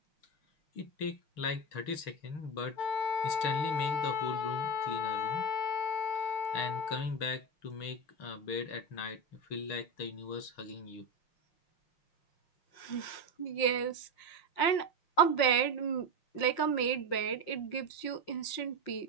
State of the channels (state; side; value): late; right; 5.6 ms